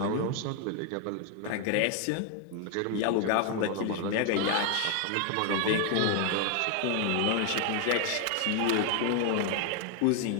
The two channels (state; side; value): different; both; correlation 0.01